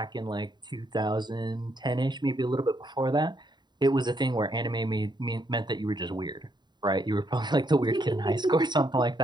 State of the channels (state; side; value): late; left; 0.21 ms